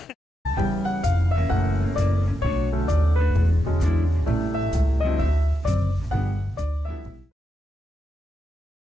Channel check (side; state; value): both; normal; correlation 0.86